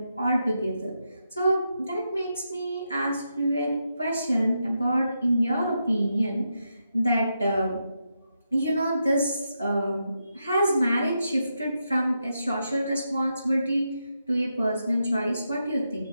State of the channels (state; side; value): inverted; both; correlation -0.84